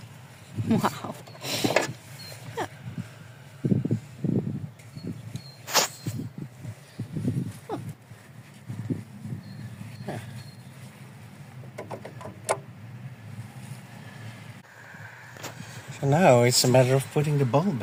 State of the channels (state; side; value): identical; both; correlation 1.00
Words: Wow. Yeah. So now it's a matter of putting the ball